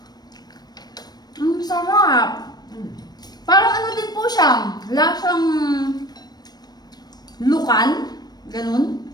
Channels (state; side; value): late; right; 0.19 ms